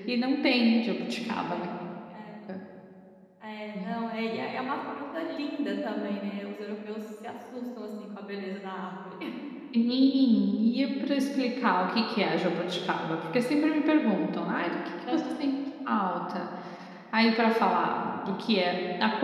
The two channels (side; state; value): both; identical; correlation 1.00